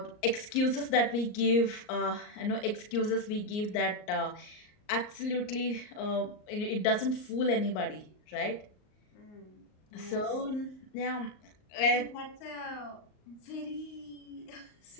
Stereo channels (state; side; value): late; right; 38 ms